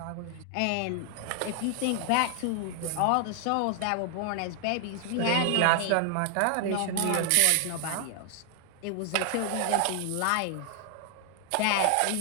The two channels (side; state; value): both; different; correlation 0.00